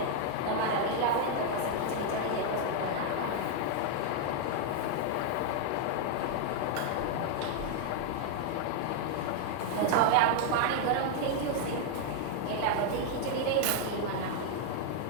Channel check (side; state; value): both; different; correlation 0.00